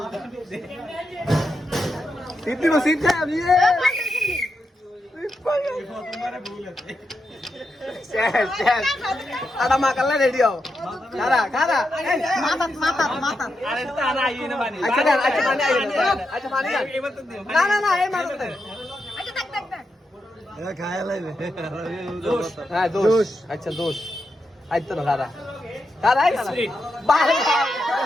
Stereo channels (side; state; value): both; normal; correlation 0.86